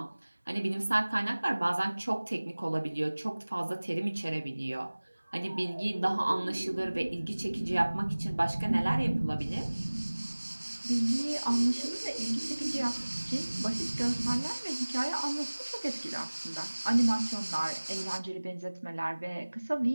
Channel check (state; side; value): inverted; both; correlation -1.00